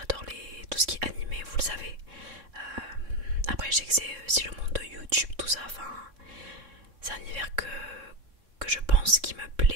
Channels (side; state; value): left; late; 3.7 ms